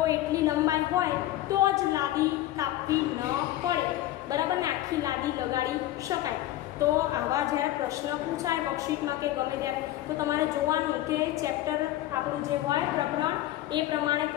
એટલી લંબાઈ હોય તો જ લાદી કાપવી ન પડે. બરાબર ને, આખી લાદી લગાડી શકાય. તો આવા જ્યારે પ્રશ્ન પૂછાય વર્કશીટમાં કે ગમે ત્યારે તો તમારે જોવાનું કે ચેપ્ટર આપણું જે હોય પ્રકરણ એ પ્રમાણે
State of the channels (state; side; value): quieter; right; 14.6 dB